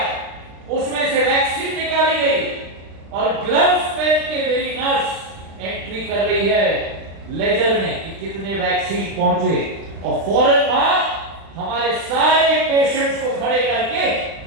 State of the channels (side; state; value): left; late; 36 ms